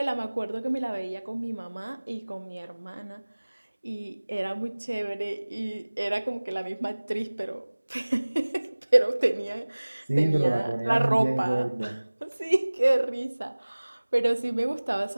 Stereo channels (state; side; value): inverted; both; correlation -1.00